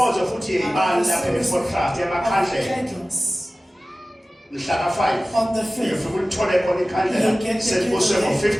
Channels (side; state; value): both; normal; correlation 0.97